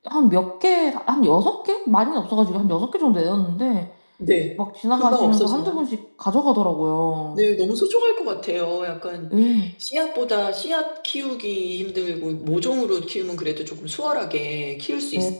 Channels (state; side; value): inverted; both; correlation -1.00